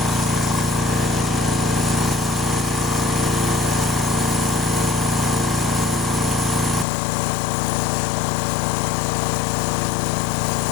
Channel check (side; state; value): right; drops out; at 6.9 s